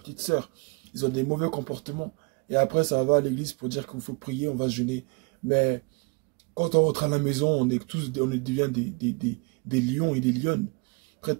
sœurs. Ils ont des mauvais comportements. Et après, ça va à l'église pour dire qu'il faut prier, on va jeûner. Mais quand on rentre à la maison, on devient des lions et des lionnes,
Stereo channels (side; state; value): left; quieter; 31.6 dB